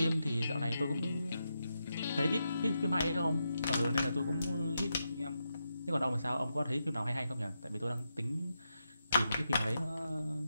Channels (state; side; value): inverted; both; correlation -0.86